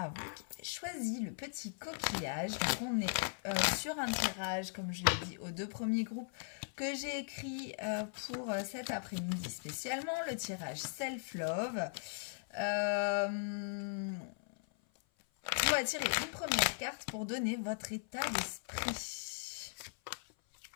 vous qui avez choisi le petit coquillage. Donc on est sur un tirage, comme je l'ai dit, aux 2 premiers groupes que j'ai écrit pour cet après-midi spécialement, le tirage Self-Love. On va tirer une première carte pour donner votre état d'esprit.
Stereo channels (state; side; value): silent; right; 52 dB below the other